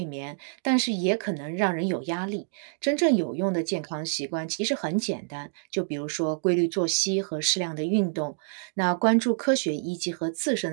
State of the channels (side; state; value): left; silent; digital silence